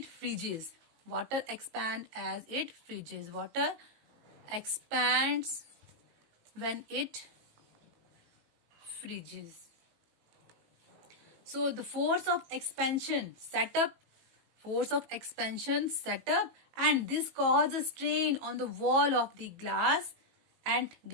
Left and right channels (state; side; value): late; left; 18 ms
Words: freezes. Water expand as it freezes. Water expands when it freezes. So the force of expansion set up, and this causes strain on the wall of the glass and